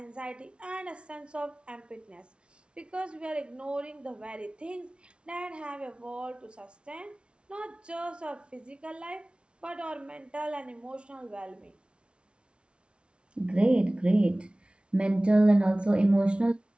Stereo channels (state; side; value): late; left; 0.058 ms